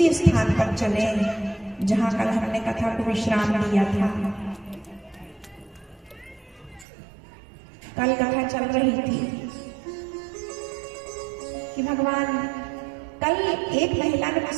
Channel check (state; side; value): drops out; left; at 6.9 s